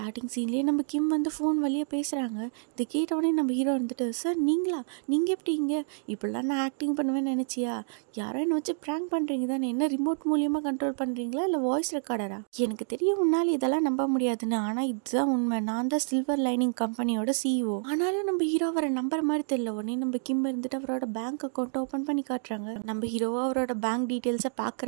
சீன்லேயே நம்ம கிம் வந்து ஃபோன் வழியாக பேசுகிறாங்க. இதை கேட்டவுடனே நம்ம ஹீரோ வந்துட்டு, சார் நீங்களா, நீங்கள் எப்படி இங்கே, இப்படிலாம் நான் ஆக்டிங் பண்ணுவேன்னு நினச்சியா, யாரோ என்னை வச்சு ப்ராங்க் பண்ணுறீங்க தானே, என்ன ரிமோட் மூலியமாக கண்ட்ரோல் பண்ணுறீங்களா இல்லை வாய்ஸ் ரெக்கார்டரா? எனக்கு தெரியும் உன்னால் இதெல்லாம் நம்ப முடியாதுன்னு, ஆனால் இதுதான் உண்மை, நான் தான் சில்வர் லைனிங் கம்பெனியோட சிஇஓ. ஆனாலும் நம்ம ஹீரோ அவரை நம்புற மாதிரி தெரியல. உடனே நம்ம கிம் இருந்துட்டு அவரோட பேங்க் அக்கௌண்ட்டை ஓப்பன் பண்ணி காட்டுறாங்க. நம்ம ஹீரோவாக அவரோட பேங்க் டீட்டெயில்ஸை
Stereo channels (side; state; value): left; silent; digital silence